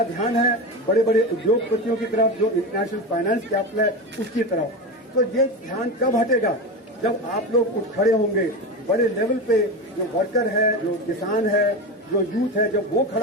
ध्यान है बड़े बड़े उद्योगपतियों की तरफ, जो इंटरनेशनल फाइनेंस कैपिटल है उसकी तरफ। तो ये ध्यान कब हटेगा, जब आप लोग उठ खड़े होंगे बड़े लेवल पे, जो वर्कर है, जो किसान है, जो यूथ है, जब वो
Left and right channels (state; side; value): normal; both; correlation 0.22